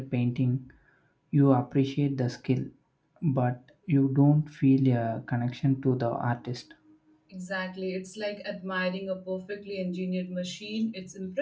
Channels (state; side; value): identical; both; correlation 1.00